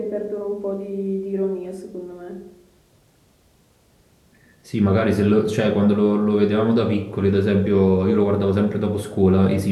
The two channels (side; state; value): both; identical; correlation 1.00